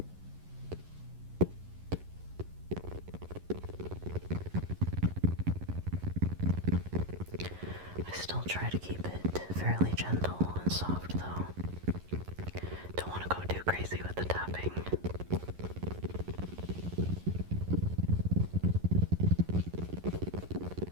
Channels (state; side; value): late; left; 11 ms